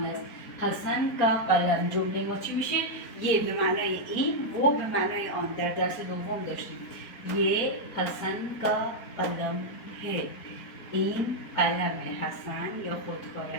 حسن کا قلم جمله ما چی میشه؟ یه به معنای این، و به معنای آن. در درس دوم داشتیم یه حسن کا قلم ہے، این قلم حسن یا خودکار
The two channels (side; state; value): right; late; 4.3 ms